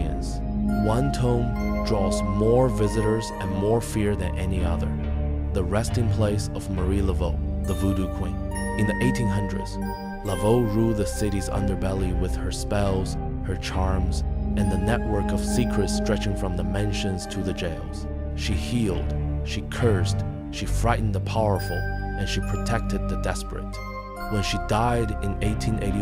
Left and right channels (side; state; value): both; identical; correlation 1.00